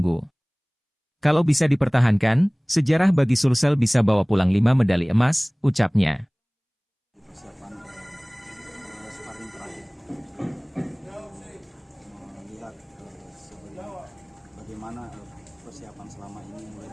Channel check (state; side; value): identical; both; correlation 1.00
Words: Kalau bisa dipertahankan, sejarah bagi Sulsel bisa bawa pulang 5 medali emas, ucapnya. Sparring terakhir melihat bagaimana persiapan selama ini mulai